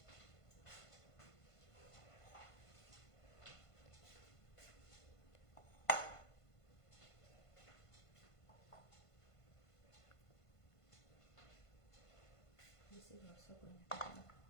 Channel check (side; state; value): right; late; 1.5 ms